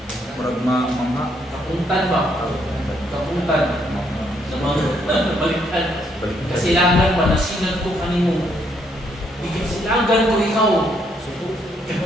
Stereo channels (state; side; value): normal; both; correlation 0.72